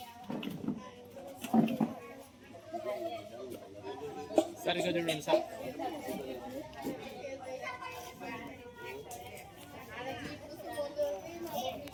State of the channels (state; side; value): identical; both; correlation 1.00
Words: సరిగ్గా చూడండి సార్.